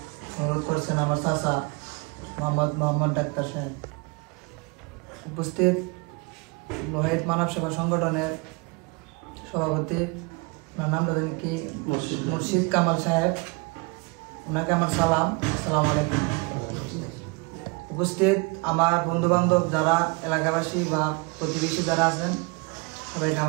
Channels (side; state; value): left; quieter; 29.5 dB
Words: অনুরোধ করছেন আমার চাচা মোহাম্মদ ডাক্তার সাহেব। উপস্থিত লোহাইত মানব সেবা সংগঠনের সভাপতি ওনার নাম জানেন কি মুর্শিদ কামাল সাহেব, ওনাকে আমার সালাম, আসসালামু আলাইকুম। উপস্থিত আমার বন্ধু বান্ধব যারা এলাকাবাসী বা প্রতিবেশী যারা আছেন সবাইকে